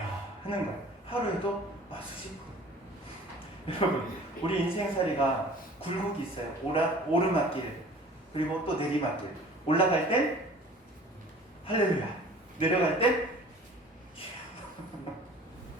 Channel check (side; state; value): both; normal; correlation 0.47